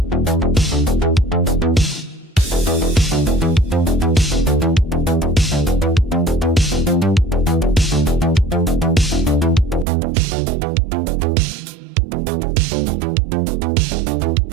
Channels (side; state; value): left; drops out; at 9.9 s